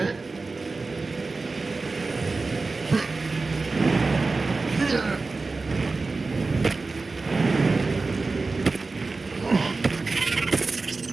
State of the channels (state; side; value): quieter; left; 3.8 dB